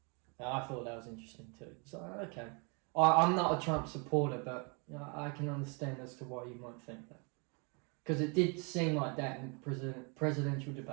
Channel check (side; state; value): left; quieter; 34.2 dB